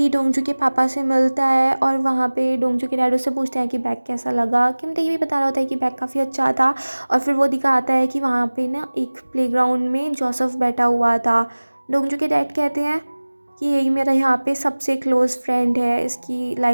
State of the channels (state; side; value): inverted; both; correlation -1.00